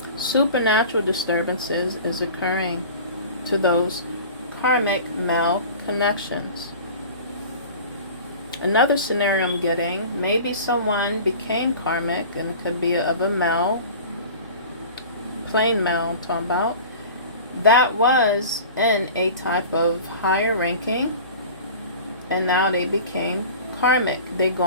Supernatural disturbances is occurring to those karmic male connections. Another scenario I'm getting, maybe someone became karmic, and it could be of a male, plain male I'm talking about, that was in a type of higher ranking, and now they became karmic. They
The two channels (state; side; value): inverted; both; correlation -0.39